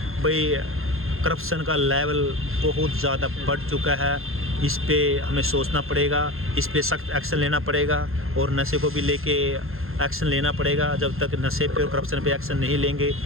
भाई करप्शन का लेवल बहुत ज़्यादा बढ़ चुका है। इस पे हमें सोचना पड़ेगा, इस पे सख्त एक्शन लेना पड़ेगा और नशे को भी लेके एक्शन लेना पड़ेगा। जब तक नशे पे और करप्शन पे एक्शन नहीं लेंगे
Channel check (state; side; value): late; left; 0.61 ms